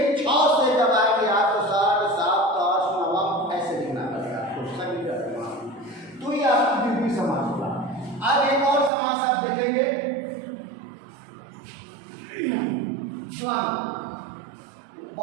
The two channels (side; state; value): left; drops out; at 8.9 s